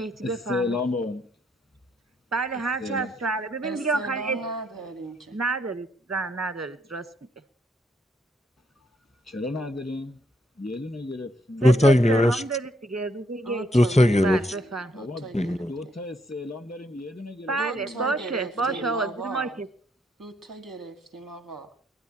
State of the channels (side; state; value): both; normal; correlation 0.73